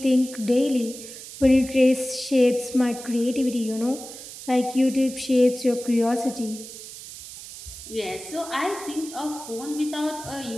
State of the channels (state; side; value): noise; right; hiss, 13 dB below the sound